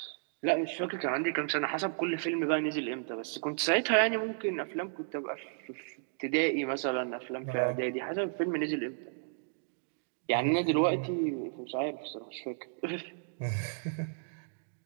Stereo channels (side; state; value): left; silent; digital silence